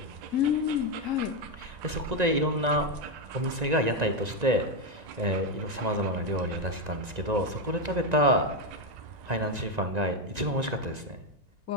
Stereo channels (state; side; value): late; left; 1.9 ms